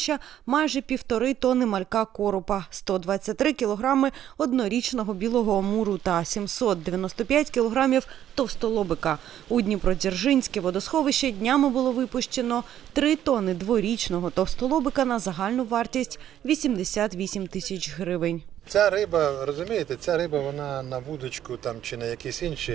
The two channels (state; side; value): quieter; left; 11.1 dB